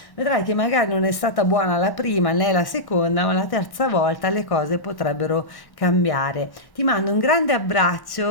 Vedrai che magari non è stata buona la prima né la seconda, ma la terza volta le cose potrebbero cambiare. Ti mando un grande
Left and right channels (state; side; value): late; right; 1.1 ms